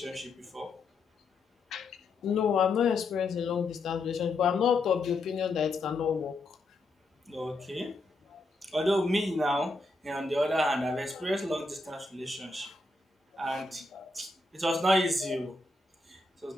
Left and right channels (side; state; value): right; quieter; 3.2 dB